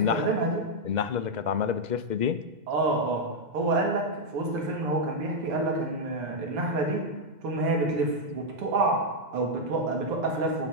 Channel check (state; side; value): late; left; 2.0 ms